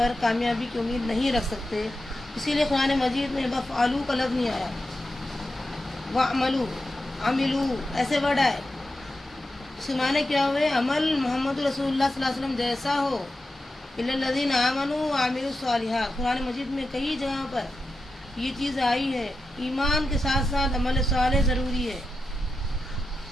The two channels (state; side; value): normal; both; correlation 0.90